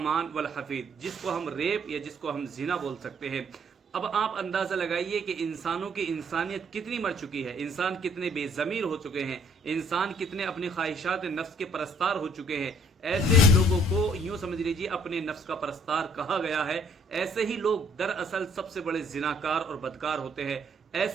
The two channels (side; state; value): both; normal; correlation 0.63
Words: वल हफीज, जिसको हम रेप या जिसको हम जिना बोल सकते हैं। अब आप अंदाजा लगाइए कि इंसानों की इंसानियत कितनी मर चुकी है, इंसान कितने बेजमीर हो चुके हैं, इंसान कितने अपनी ख्वाहिशात नफ्स के परस्तार हो चुके हैं। ऐसे लोगों को यूं समझ लीजिए अपने नफ्स का परस्तार कहा गया है। ऐसे ही लोग दरअसल सबसे बड़े जिनाकार और बदकार होते हैं।